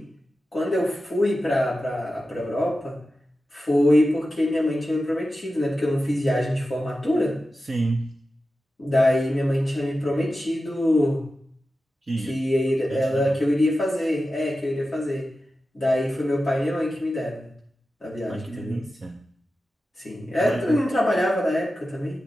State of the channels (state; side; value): normal; both; correlation 0.93